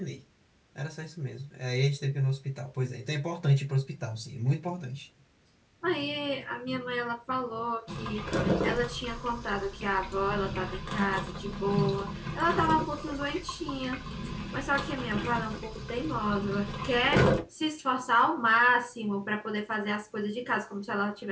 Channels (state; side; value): identical; both; correlation 1.00